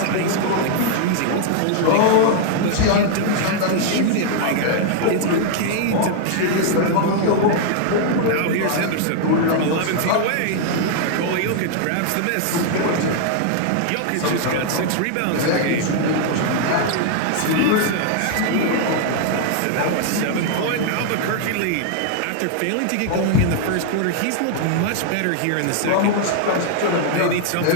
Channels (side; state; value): both; different; correlation 0.00